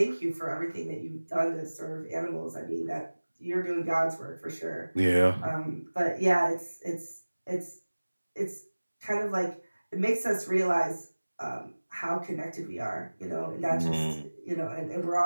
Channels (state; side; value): inverted; both; correlation -1.00